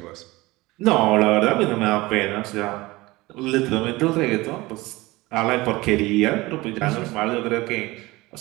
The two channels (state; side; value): quieter; left; 20.8 dB